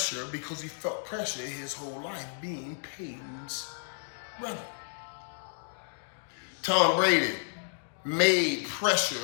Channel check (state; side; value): silent; right; digital silence